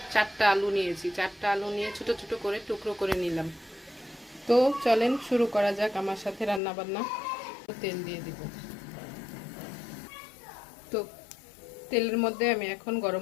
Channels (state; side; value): drops out; right; at 6.6 s